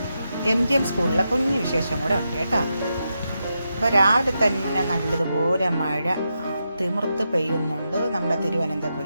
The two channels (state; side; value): inverted; both; correlation -0.86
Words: MGM സ്കൂളിലെ കുഞ്ഞു വിശേഷം കൂടെ ഉണ്ട് കേട്ടോ. അപ്പോൾ രാവിലെ തന്നെ നല്ലതുപോലെ മഴ തിമിർത്ത് പെയ്യുന്നുണ്ട് നമ്മുടെ